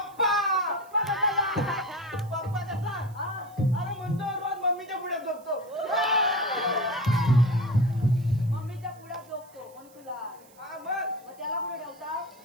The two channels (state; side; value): noise; right; hiss, 27 dB below the sound